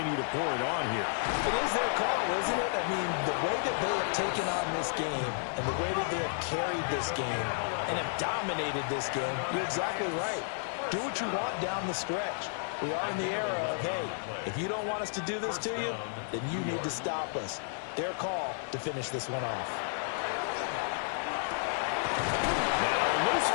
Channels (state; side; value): silent; right; digital silence